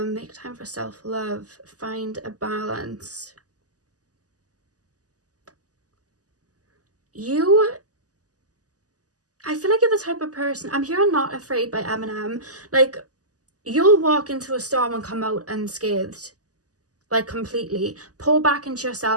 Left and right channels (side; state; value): left; late; 0.67 ms